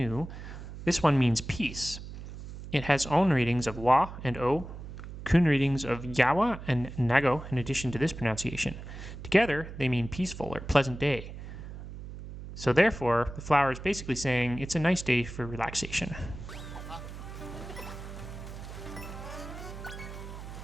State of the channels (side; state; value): right; noise; hum, 11 dB below the sound